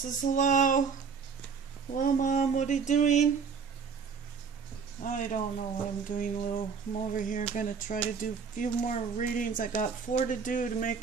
hello. Hello, Mom. What are you doing? I don't know what I'm doing, Lou. I'm over here going to try to do a few more readings. I got 4 to do to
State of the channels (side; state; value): left; quieter; 5.9 dB